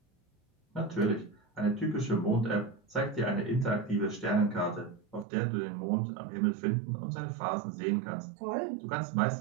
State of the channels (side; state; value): left; drops out; at 5.2 s